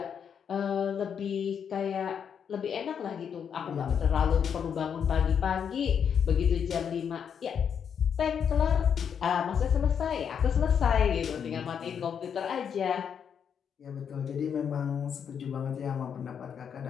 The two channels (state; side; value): quieter; right; 7.6 dB